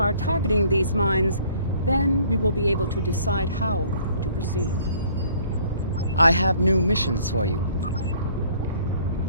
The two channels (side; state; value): both; inverted; correlation -0.58